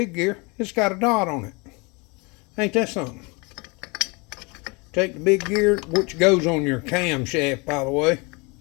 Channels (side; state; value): right; quieter; 28.3 dB